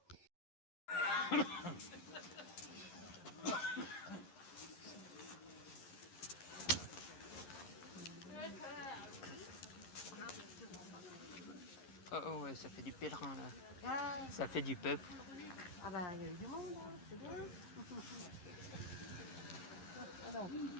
Oh ouais, ça fait du pèlerin là. Ça fait du peuple. Ah bah il y a eu du monde, hein, c'est bien. Alors,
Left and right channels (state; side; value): late; right; 11 ms